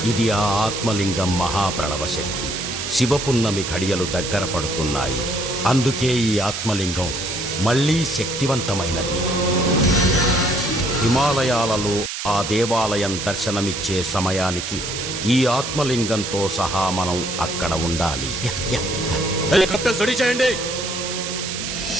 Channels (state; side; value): noise; right; hiss, 5 dB below the sound